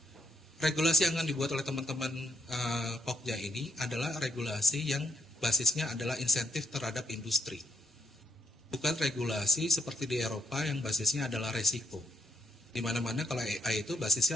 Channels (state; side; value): normal; both; correlation 0.77